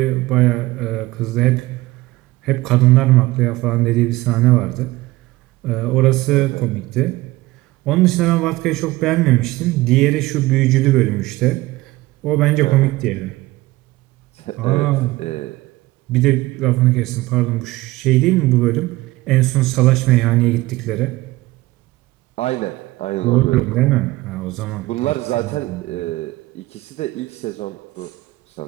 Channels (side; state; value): left; quieter; 19.0 dB